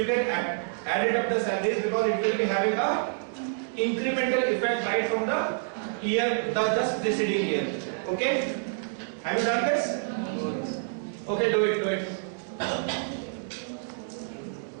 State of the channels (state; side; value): silent; left; digital silence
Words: can add it up the salaries because it will be having a incremental effect right from the year, the just preceding year. Okay? Have you done this? Okay, do it.